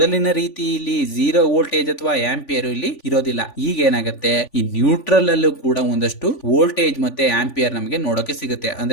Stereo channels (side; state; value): right; late; 3.5 ms